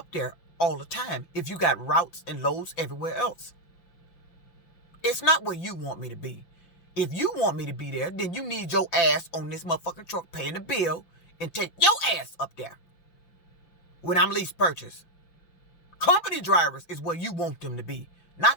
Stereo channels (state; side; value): late; right; 5.8 ms